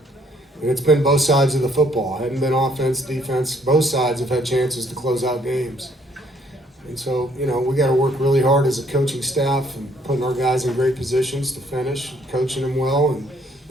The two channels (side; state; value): both; normal; correlation 0.65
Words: And it's been both sides of the football. It hadn't been offense, defense. Both sides have had chances to close out games. And so, you know, we got to work really hard as a coaching staff and putting our guys in great positions to finish, coaching them well, and